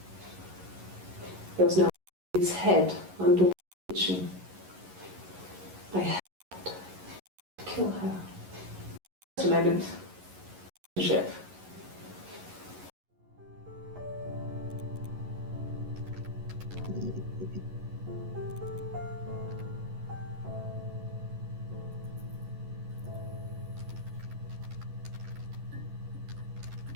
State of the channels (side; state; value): left; late; 11 ms